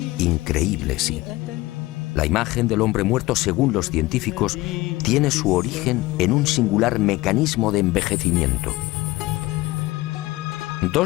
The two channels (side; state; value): right; quieter; 19.3 dB